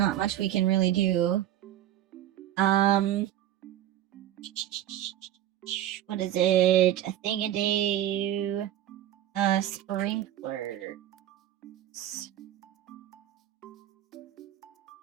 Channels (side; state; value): left; quieter; 12.3 dB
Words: much we can really do. What is it? A thing-a-day sprinklers.